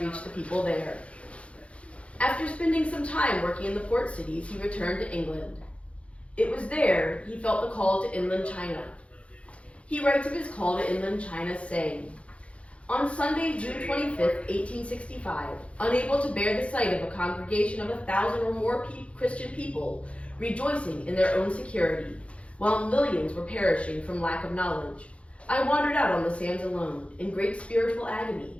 reach the people there. After spending some time working in the port cities, he returned to England. It was there he felt the call to inland China. He writes of his call to inland China, saying, "On Sunday, June 25th, 1865, unable to bear the sight of a congregation of 1,000 or more Christian people rejoicing in their own security, while millions were perishing from lack of knowledge, I wandered out on the sands alone, in great spiritual agony.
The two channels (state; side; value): late; right; 0.062 ms